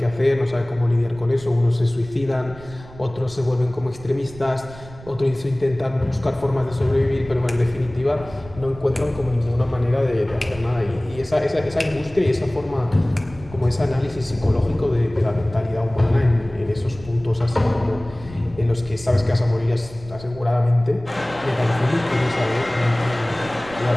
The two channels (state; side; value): noise; right; rumble, 18 dB below the sound